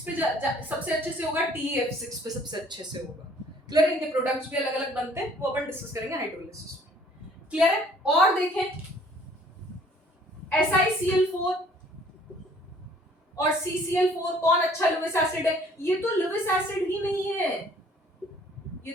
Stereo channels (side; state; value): both; normal; correlation 0.57